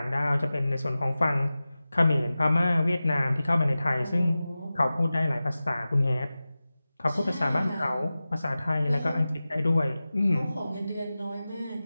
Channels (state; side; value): inverted; both; correlation -0.96